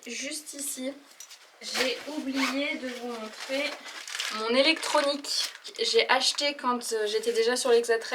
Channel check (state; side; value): identical; both; correlation 1.00